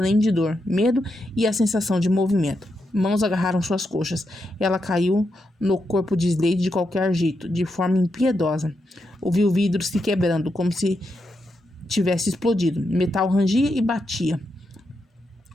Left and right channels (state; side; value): normal; both; correlation 0.84